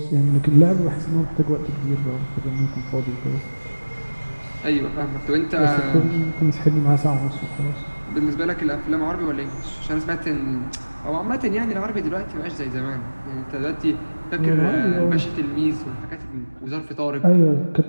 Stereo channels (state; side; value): inverted; both; correlation -1.00